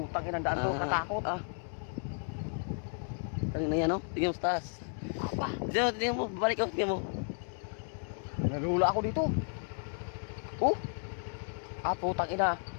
inang daan to, katakot. Tangin na yan, no? Tingnan mo sa taas. Aba. Tingnan mo, babalik ako, tingnan mo. Nalula ako dito. Oh. Putang ina.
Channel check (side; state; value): right; silent; 55 dB below the other